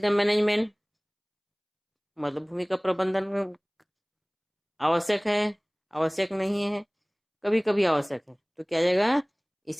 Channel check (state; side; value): identical; both; correlation 1.00